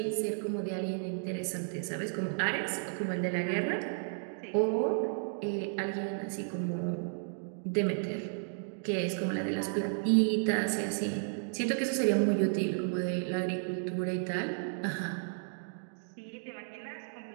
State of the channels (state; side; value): silent; left; digital silence